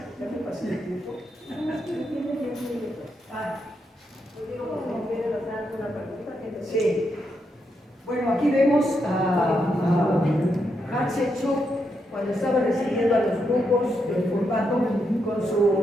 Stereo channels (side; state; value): both; normal; correlation 0.82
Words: ¿Ya me pasé el tiempo? Sí. Bueno, aquí vemos a Hatshepsut cuando estaba recibiendo a los grupos del formato con